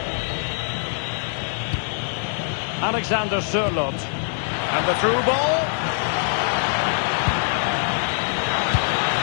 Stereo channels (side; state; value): right; silent; 63 dB below the other